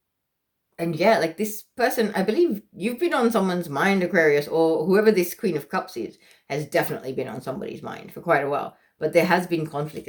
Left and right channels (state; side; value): identical; both; correlation 1.00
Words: And yeah, like this person, I believe you've been on someone's mind, Aquarius, or whoever this Queen of Cups is, has definitely been on somebody's mind for quite a while. But there has been conflict